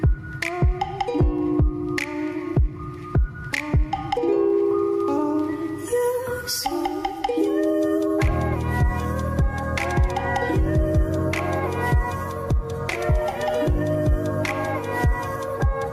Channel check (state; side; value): identical; both; correlation 1.00